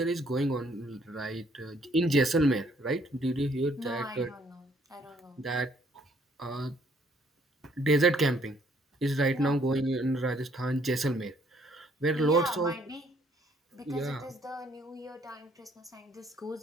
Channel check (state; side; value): normal; both; correlation 0.65